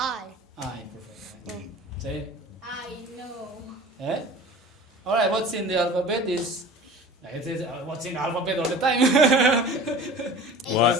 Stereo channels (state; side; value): normal; both; correlation 0.40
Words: I, perfect. Say, I know. eh? All right. What's in the alphabet is. It says what's in the alphabet all the time. What?